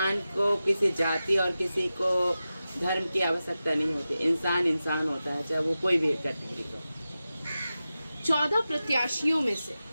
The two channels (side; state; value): both; inverted; correlation -0.93